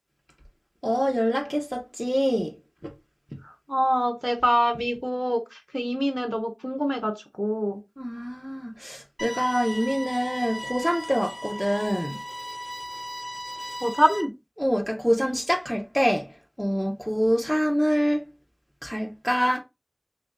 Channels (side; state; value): both; identical; correlation 1.00